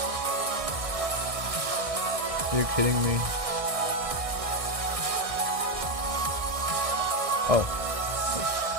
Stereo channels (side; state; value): left; late; 1.6 ms